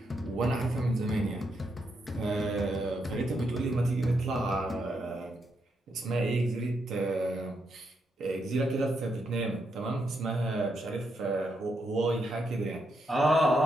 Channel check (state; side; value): normal; both; correlation 0.80